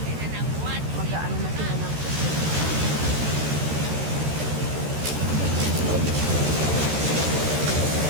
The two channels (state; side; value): late; left; 14 ms